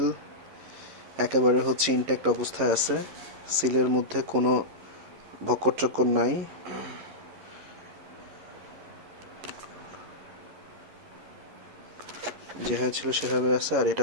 একেবারে হচ্ছে ইনট্যাক্ট অবস্থায় আছে। সিলের মধ্যে কোনো ভক্কর চক্কর নাই। যেভাবে ছিল সেভাবে আছে। আর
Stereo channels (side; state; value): left; late; 11 ms